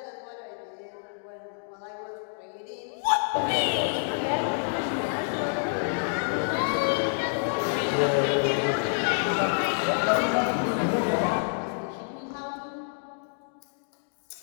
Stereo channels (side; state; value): right; silent; digital silence